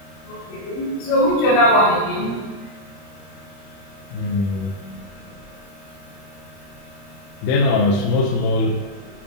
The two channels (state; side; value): late; right; 30 ms